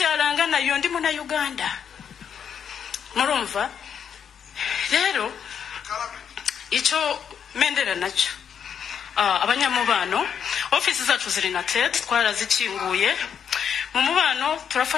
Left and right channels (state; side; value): quieter; right; 7.8 dB